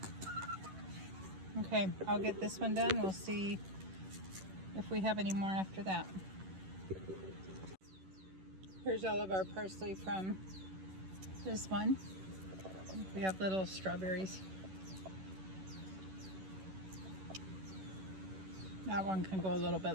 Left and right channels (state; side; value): late; left; 11 ms